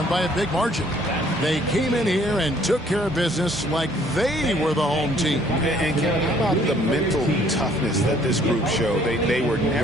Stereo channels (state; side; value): normal; both; correlation 0.61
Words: by a big margin. They came in here and took care of business like they were the home team. And Kevin, how about the mental toughness that this group showed? They were